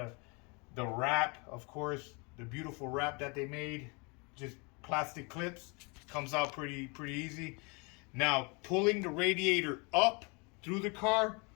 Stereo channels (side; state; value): right; quieter; 30.8 dB